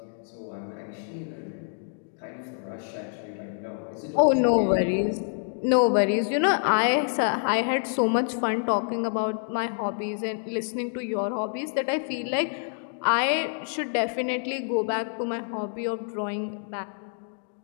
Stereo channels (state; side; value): silent; right; 60 dB below the other